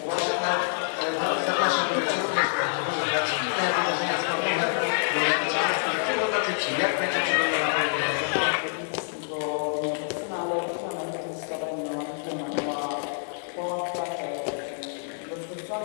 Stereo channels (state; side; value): silent; right; digital silence